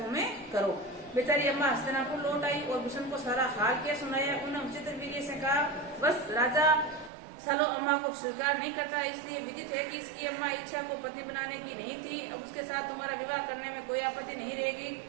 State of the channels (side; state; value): left; drops out; at 7.1 s